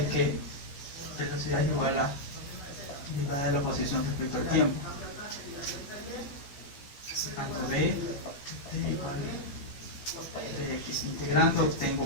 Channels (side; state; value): right; late; 15 ms